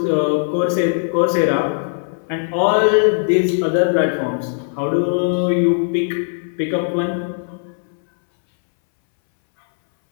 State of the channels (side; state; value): right; silent; 64 dB below the other